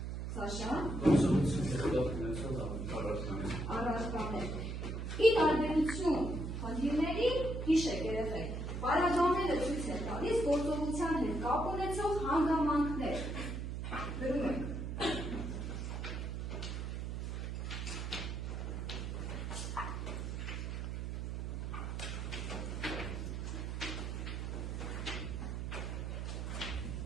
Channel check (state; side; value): noise; right; hum, 4 dB below the sound